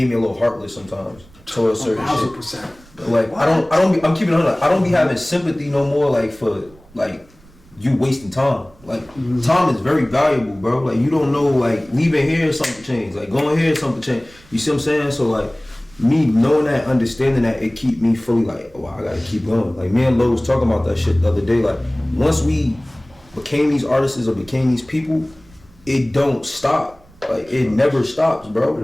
me a little heartless sometimes towards certain shit. Like I'm keeping it on. I don't be having sympathy no more like for like you wasting time. Like time is very valuable, bro. Like you don't know, like leaving here something change, like going here something change. You see what I'm saying? So like me knowing that, understanding that, it keep me fully like, oh, I gotta keep going. Like me and Lo was talking about that shit the other day. Like once we became these artists or became these people, it don't stop. Like it never stops, bro.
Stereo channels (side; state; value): right; noise; rumble, 26 dB below the sound